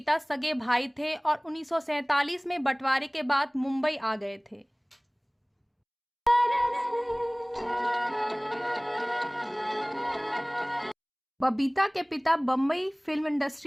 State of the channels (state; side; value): identical; both; correlation 1.00